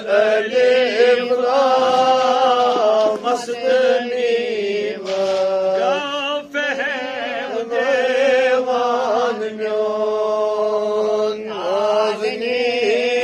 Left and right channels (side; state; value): both; identical; correlation 1.00